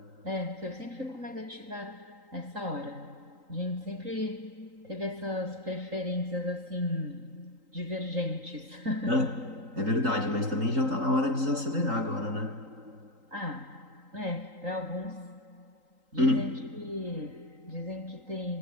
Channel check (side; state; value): left; late; 3.8 ms